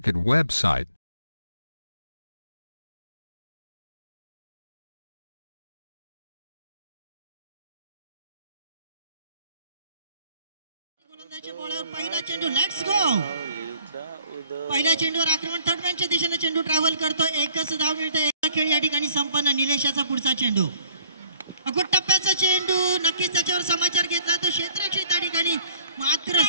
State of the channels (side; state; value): both; inverted; correlation -0.59